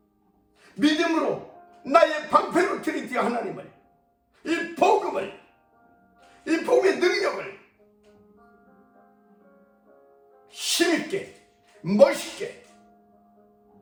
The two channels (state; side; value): identical; both; correlation 1.00